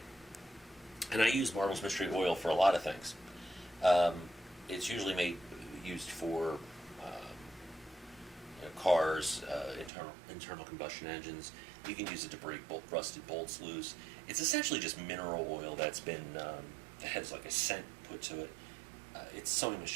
And I use Marvel's Mystery Oil for a lot of things. It's usually used for cars, internal combustion engines. You can use it to break rusted bolts loose. It's essentially just mineral oil that's been that has like a scent put to it. It's sewing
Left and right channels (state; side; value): drops out; left; at 9.9 s